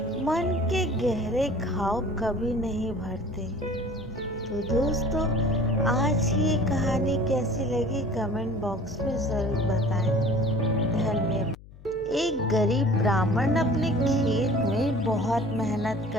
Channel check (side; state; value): left; noise; hum, 20 dB below the sound